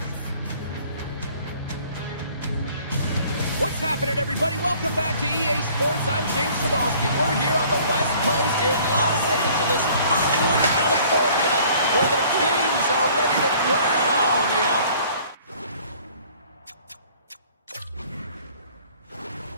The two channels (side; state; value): both; inverted; correlation -0.54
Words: What's happening, everybody? Welcome back to EA Sports. I'm James Cebulski. We're here on the West Coast in Los Angeles, Hollywood, California, where the Kings are ready to crown the